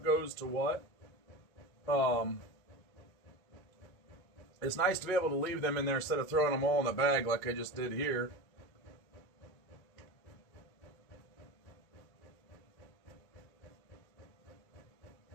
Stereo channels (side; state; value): right; late; 1.9 ms